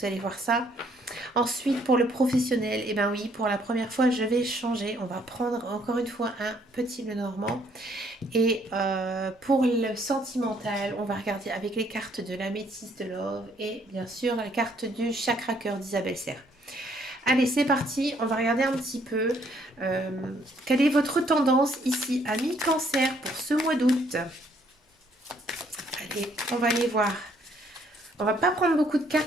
allez voir ça. Ensuite, pour le professionnel, et eh ben oui, pour la première fois, je vais changer. On va prendre encore une fois un petit Lenormand. Et pour le sentimental, on va regarder avec les cartes de la métisse de Love et bien sûr la carte du chakra cœur d'Isabelle Serre. Allez, c'est parti, on va regarder un petit peu euh, quelle est votre tendance ici à mi-cancer pour ce mois d'août. Allez, on va aller voir. On va pas prendre beaucoup de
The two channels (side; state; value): both; normal; correlation 0.66